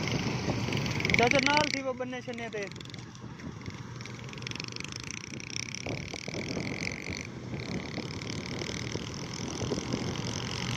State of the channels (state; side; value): identical; both; correlation 1.00